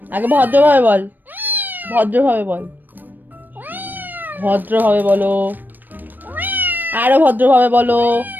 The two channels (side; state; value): left; late; 0.090 ms